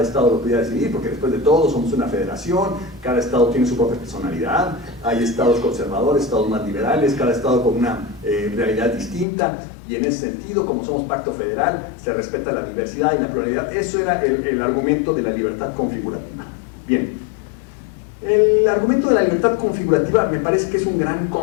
estado lo pudiera decidir, porque después de todo somos una federación, cada estado tiene su propia personalidad, hay estados conservadores, estados más liberales, cada estado con una realidad distinta, y en ese sentido, como somos pacto federal, se respeta la diversidad y la pluralidad. Eso era el argumento de la libertad configurativa. Bien, el argumento de la libertad configurativa me parece que es un gran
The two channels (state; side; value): drops out; right; at 9.2 s